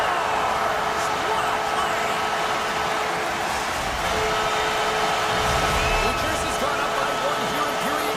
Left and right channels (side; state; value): both; identical; correlation 1.00